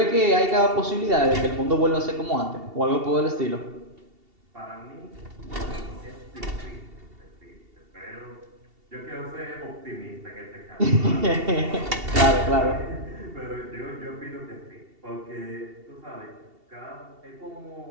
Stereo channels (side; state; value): left; late; 2.7 ms